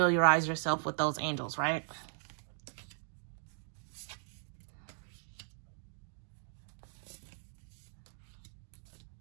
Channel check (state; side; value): silent; left; digital silence